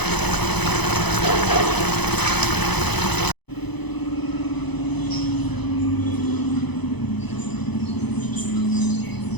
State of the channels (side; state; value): right; late; 0.99 ms